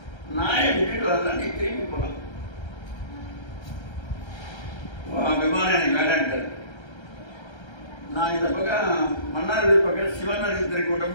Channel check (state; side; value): late; right; 1.3 ms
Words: நாயை கூட்டிட்டு வரலாம், நீ திரும்பி போகலாம். விமானம் எனக்கு வேண்டான்ட்டார். நான் இந்த பக்கம் மன்னார்குடி பக்கம் சிவனருக்கு